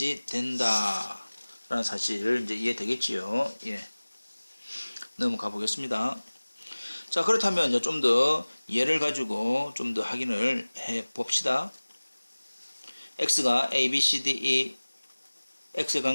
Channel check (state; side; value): inverted; both; correlation -1.00